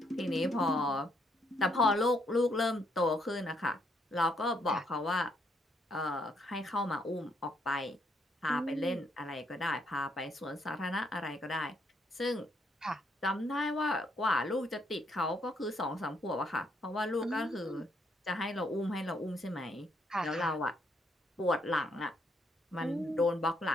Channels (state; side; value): normal; both; correlation 0.73